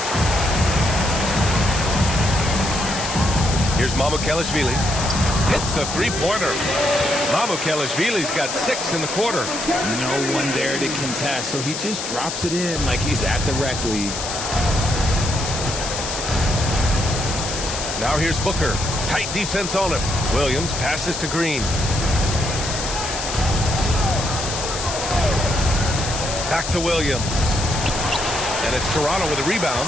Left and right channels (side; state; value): left; noise; hiss, 5 dB below the sound